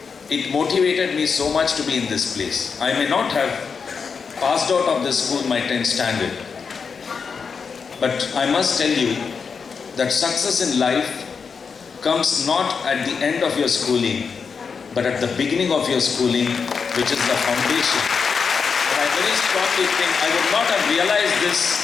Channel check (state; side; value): quieter; right; 5.7 dB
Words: It motivated me so much to be in this place. I may not have passed out of this school my 10th standard, but I must tell you that success in life comes not at the end of your schooling, but at the beginning of your schooling, which is the foundation. And I very strongly think I would not have realized